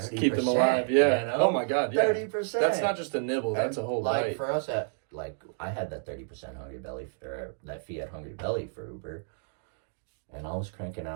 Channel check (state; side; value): silent; left; digital silence